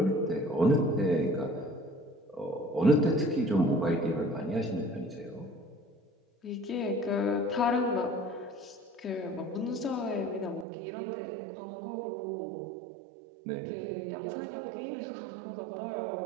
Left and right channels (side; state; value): left; drops out; at 10.7 s